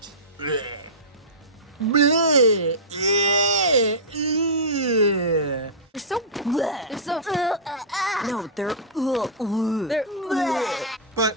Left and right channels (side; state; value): both; normal; correlation -0.16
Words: Bleh. Bleh. Yeah. Yeah. They're so bleh. They're so no, they're bleh. But